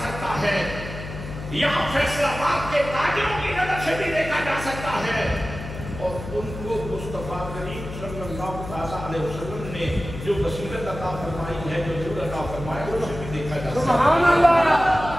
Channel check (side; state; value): left; noise; hum, 10 dB below the sound